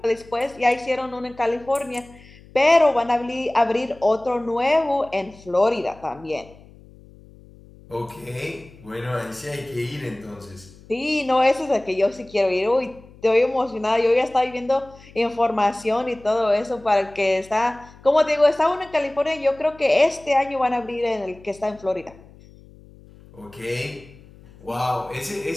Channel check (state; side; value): noise; left; hum, 23 dB below the sound